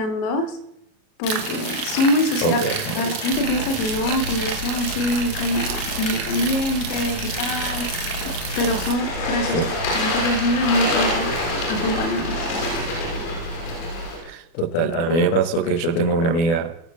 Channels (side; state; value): right; late; 37 ms